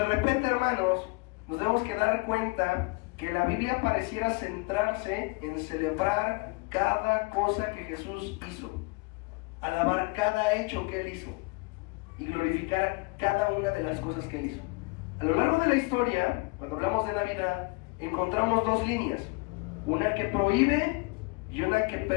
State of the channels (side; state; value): right; quieter; 27.4 dB